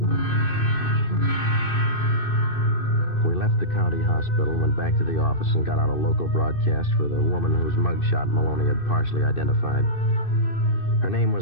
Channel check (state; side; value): late; right; 2.6 ms